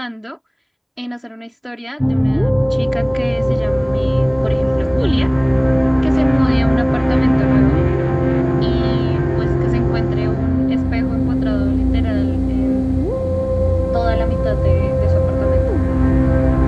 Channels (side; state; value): both; identical; correlation 1.00